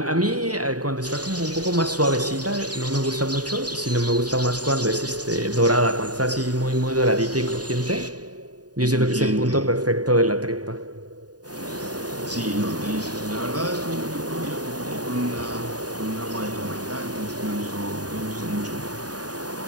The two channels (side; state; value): left; late; 0.68 ms